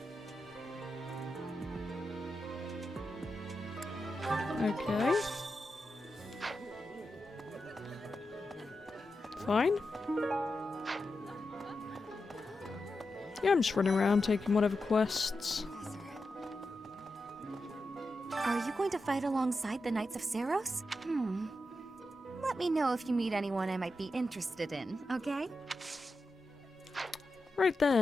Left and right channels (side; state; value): both; normal; correlation 0.89